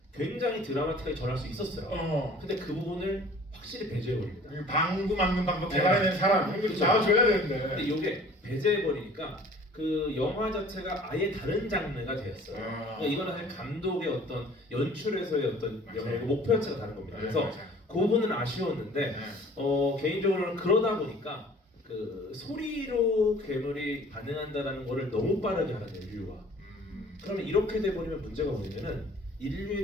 굉장히 드라마틱하게 전할 수 있었어요. 근데 그 부분을 확실히 배제해버립니다. 방구 막는 방법 개발해낸 사람 이거 나와줘야 되는데. 근데 이게 배제해버리니까 그 영화 자체가 아예 다른 장르가 되었어요. 그러니까 이거는 사실 감독의 어떤 연출에서의 어떤 목표 자체가 다른 겁니다. 그래서 그 부분은 아쉬웠는데 개인적으로는 그러다 보니까 그 소리로 괴물이 반응한다라는 거를 너무 빠르게 하는 인류가. 그러면 이렇게 돼버리면 문제가 뭐냐면은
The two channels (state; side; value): normal; both; correlation 0.50